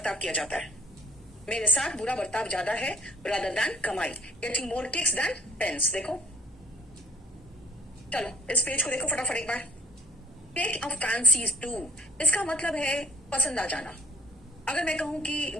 किया जाता है। मेरे साथ बुरा बर्ताव ज्यादा है रादर देन कमाई। Getting more kicks than pence. देखो, चलो इस पेज को देखो फटाफट एक बार। टेक अ फैंसी टू, इसका मतलब है पसंद आ जाना। अगर मैं कहूं कि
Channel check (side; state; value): both; normal; correlation 0.52